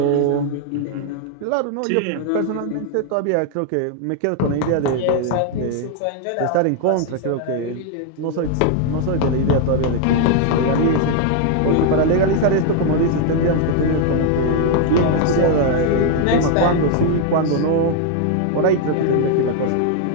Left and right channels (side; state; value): both; different; correlation 0.00